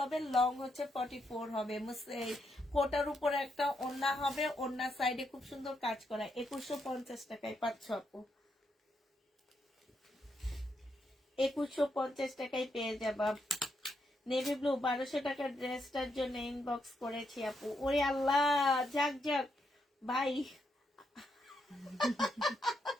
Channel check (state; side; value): normal; both; correlation 0.80